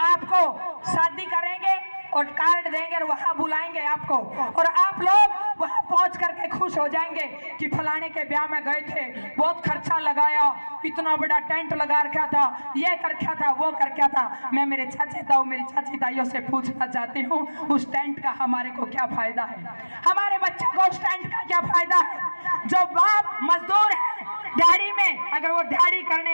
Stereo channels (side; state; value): both; inverted; correlation -1.00